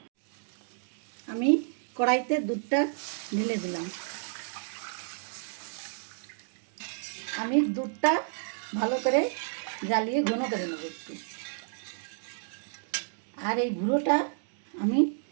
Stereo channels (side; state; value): left; silent; digital silence